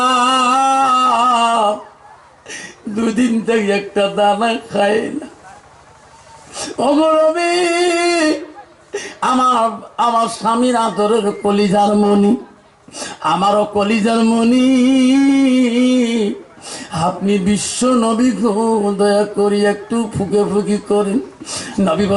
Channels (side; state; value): both; identical; correlation 1.00